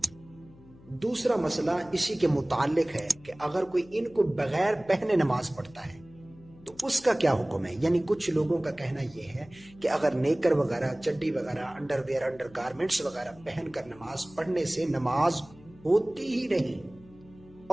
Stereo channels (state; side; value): noise; left; hum, 23 dB below the sound